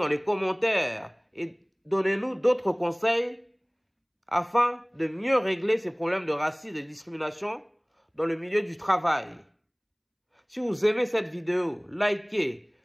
les commentaires et donnez-nous d'autres conseils afin de mieux régler ces problèmes de racisme et de discrimination dans le milieu du travail. Si vous aimez cette vidéo, likez,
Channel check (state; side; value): identical; both; correlation 1.00